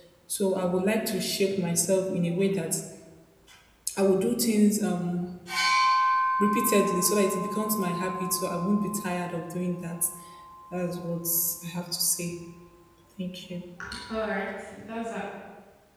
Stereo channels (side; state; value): both; identical; correlation 1.00